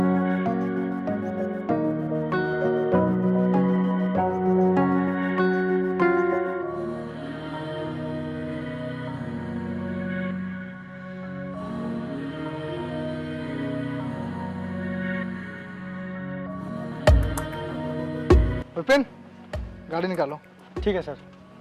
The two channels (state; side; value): identical; both; correlation 1.00